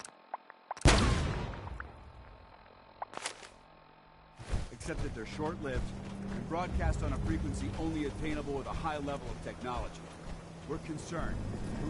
Except that they're short-lived and broadcast on a frequency only attainable with a high level of technology. We're concerned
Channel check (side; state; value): both; identical; correlation 1.00